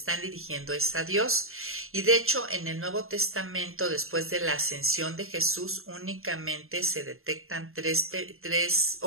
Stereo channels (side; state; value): left; late; 0.61 ms